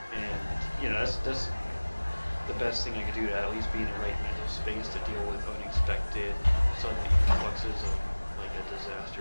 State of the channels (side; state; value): both; inverted; correlation -1.00